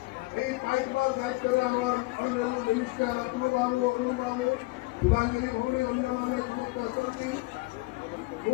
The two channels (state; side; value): quieter; right; 23.3 dB